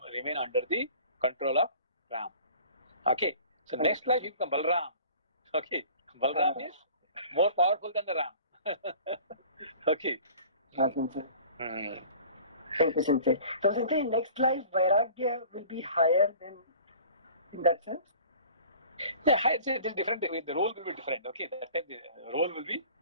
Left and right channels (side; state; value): both; inverted; correlation -0.46